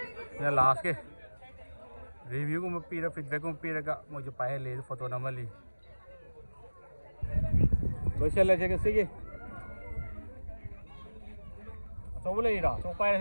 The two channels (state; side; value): inverted; both; correlation -1.00